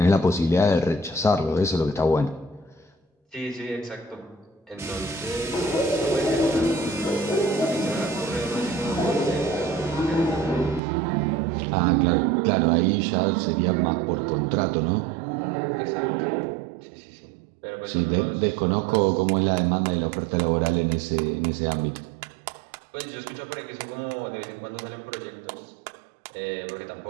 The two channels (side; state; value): left; drops out; at 10.8 s